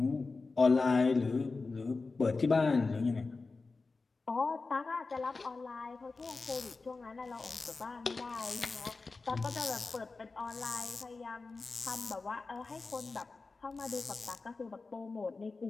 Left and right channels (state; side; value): quieter; right; 3.9 dB